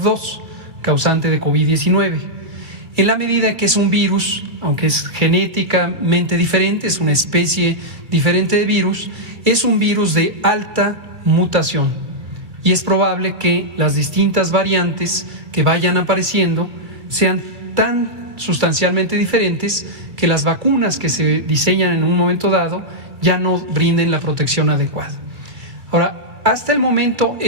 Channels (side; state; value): left; late; 2.4 ms